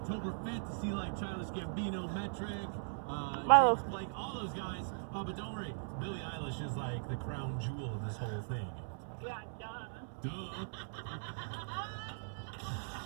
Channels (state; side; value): silent; left; 52 dB below the other